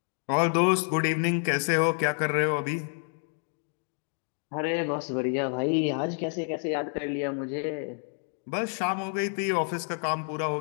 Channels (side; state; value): right; silent; 59 dB below the other